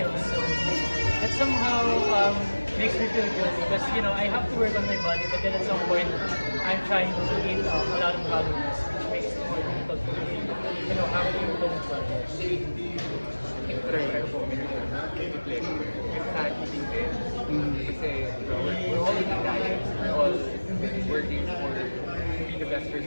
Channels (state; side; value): inverted; both; correlation -1.00